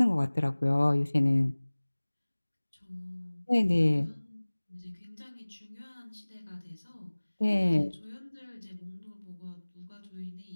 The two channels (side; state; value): both; inverted; correlation -1.00